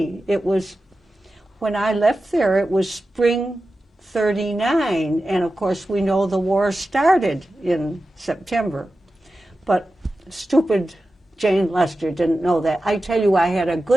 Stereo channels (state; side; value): normal; both; correlation 0.93